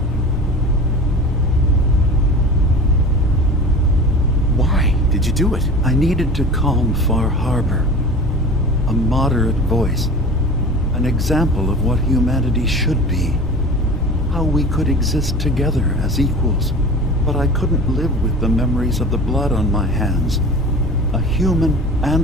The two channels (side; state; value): both; normal; correlation 0.36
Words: Why did you do it? I needed to calm Far Harbor. A moderate voice. An example of what humanity should be. how we could exist together as equals, but I couldn't live with the memories of the blood on my hands. A human